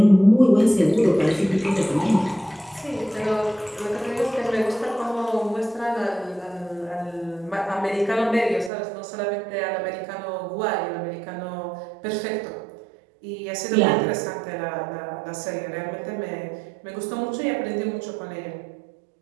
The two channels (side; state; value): left; drops out; at 8.7 s